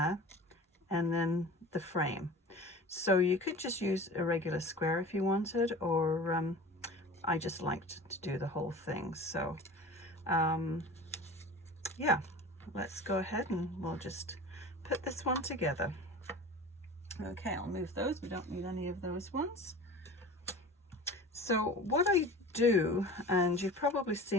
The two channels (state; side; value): normal; both; correlation 0.38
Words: and then the frame. So you could just use a regular square if you wanted, or I just liked to do the whole thing. So yeah, let's go ahead and we'll just put this one together. Okay, I'll move those. We don't need any of those ones. So what I do, and you've probably